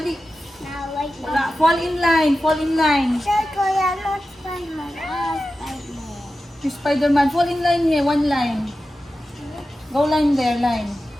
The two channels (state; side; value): normal; both; correlation 0.93